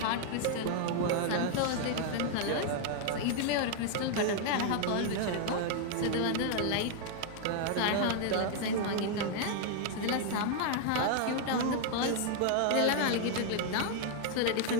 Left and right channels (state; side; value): different; both; correlation 0.00